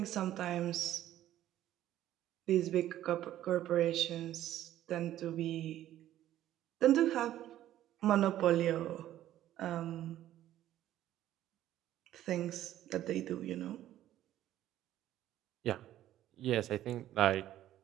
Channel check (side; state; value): left; quieter; 12.9 dB